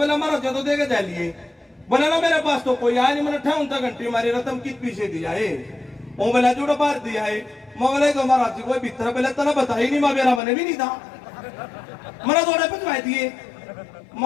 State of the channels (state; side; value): drops out; right; at 10.4 s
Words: महाराज जी तो देके जा लिए। बोला ना मेरे पास तो कोई आया नहीं, मैंने 58 घंटे मारी रतम किस पीछे दिया है। वो बोला जुड़ा बाहर दिया है। मैं बोला तो महाराज जी कोई भीतर पहले तना बता ही नहीं, मैं मेरा मैंने भी नहीं था, मैंने थोड़े पहुंचवाए दिए।